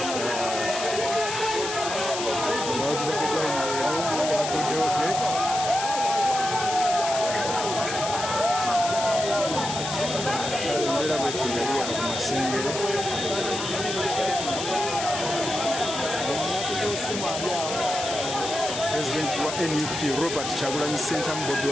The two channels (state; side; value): noise; left; hiss, 5 dB below the sound